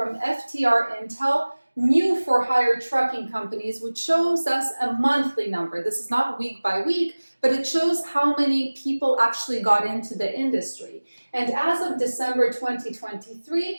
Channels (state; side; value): inverted; both; correlation -1.00